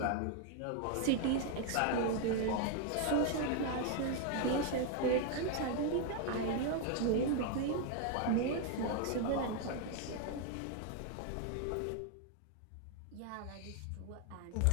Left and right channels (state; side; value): different; both; correlation 0.00